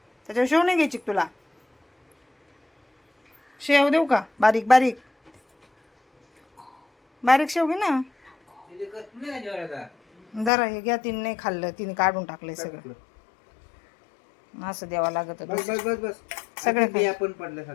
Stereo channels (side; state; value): right; drops out; at 10.5 s